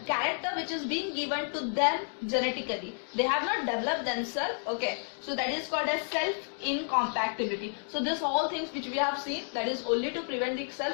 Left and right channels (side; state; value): right; silent; 57 dB below the other